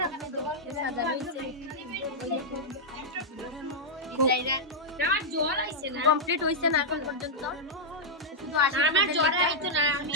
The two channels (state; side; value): normal; both; correlation -0.06